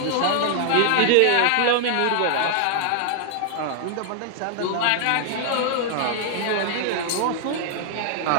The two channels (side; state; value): both; different; correlation 0.00